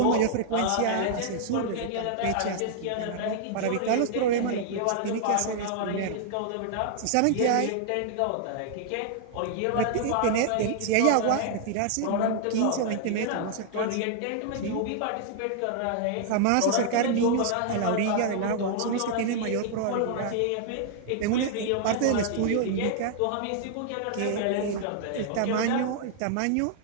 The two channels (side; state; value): both; different; correlation 0.00